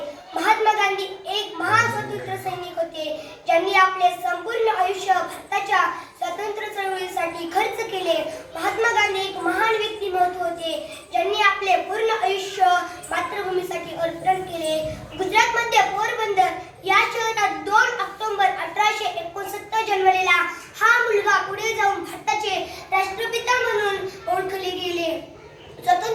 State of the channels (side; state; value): both; identical; correlation 1.00